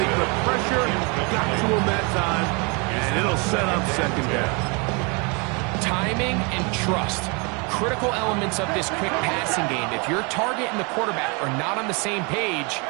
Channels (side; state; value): left; quieter; 31.6 dB